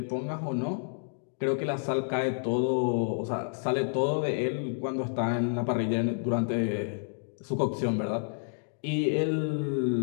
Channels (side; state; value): right; silent; digital silence